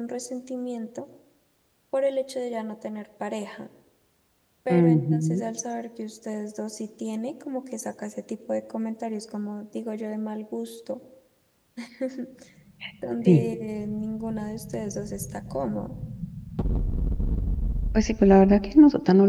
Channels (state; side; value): identical; both; correlation 1.00